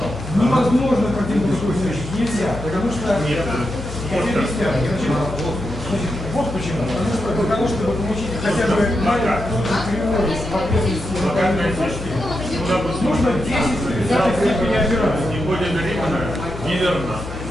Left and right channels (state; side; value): noise; left; hum, 10 dB below the sound